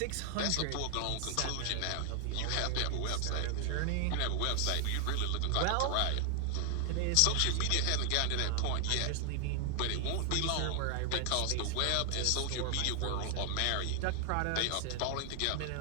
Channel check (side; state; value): both; different; correlation 0.00